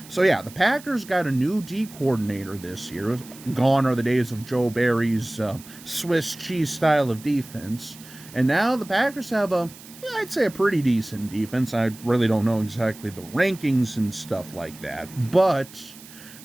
So yeah, the Packers got a new D coordinator this year. Gone are the days of Joe Barry's Swiss cheese style of defense. And now the Packers have I'd say a pretty decent defense. I really don't know exactly the rankings and stuff like that. But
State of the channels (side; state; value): right; noise; hiss, 19 dB below the sound